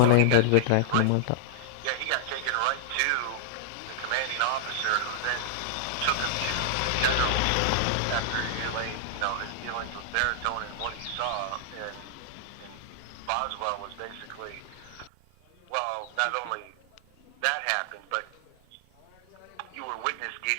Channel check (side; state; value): both; different; correlation -0.01